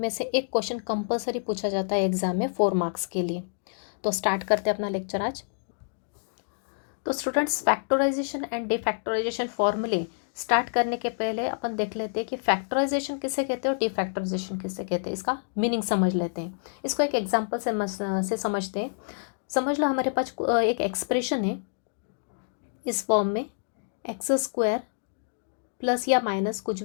से एक क्वेश्चन कंपलसरी पूछा जाता है एग्जाम में 4 मार्क्स के लिए। तो स्टार्ट करते हैं अपना लेक्चर आज। तो स्टूडेंट्स, फैक्टराइजेशन एंड डिफैक्टराइजेशन फॉर्मूले स्टार्ट करने के पहले अपन देख लेते हैं कि फैक्टराइजेशन किसे कहते हैं और डिफैक्टराइजेशन किसे कहते हैं। इसका मीनिंग समझ लेते हैं। इसको एक एग्जाम्पल से समझते हैं। समझ लो हमारे पास एक एक्सप्रेशन है इस फॉर्म में, एक्स स्क्वायर प्लस या माइनस कुछ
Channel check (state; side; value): silent; right; digital silence